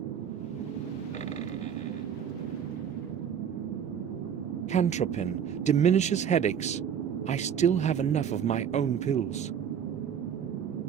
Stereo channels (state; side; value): quieter; left; 8.3 dB